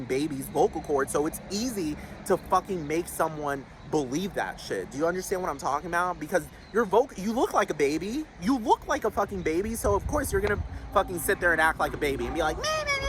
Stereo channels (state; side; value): identical; both; correlation 1.00